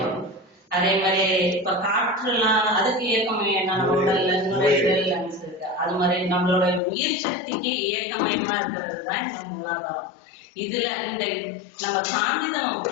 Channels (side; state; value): right; drops out; at 6.8 s